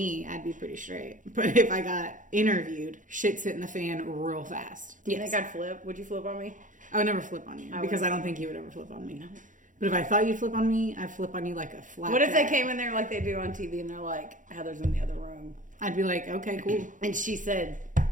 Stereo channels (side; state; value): left; late; 0.37 ms